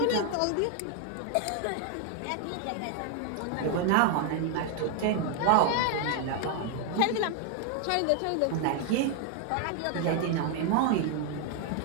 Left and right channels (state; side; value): different; both; correlation 0.00